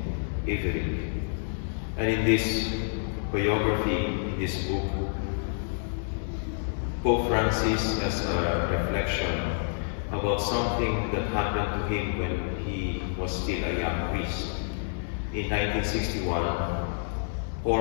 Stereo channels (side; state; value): right; silent; digital silence